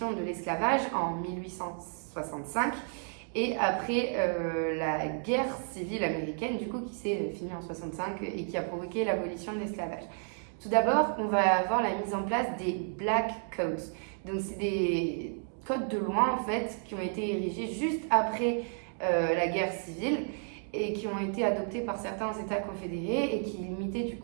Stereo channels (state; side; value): silent; left; 57 dB below the other